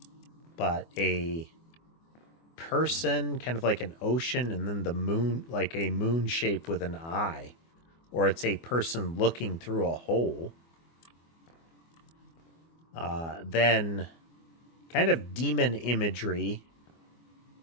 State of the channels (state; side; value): late; right; 24 ms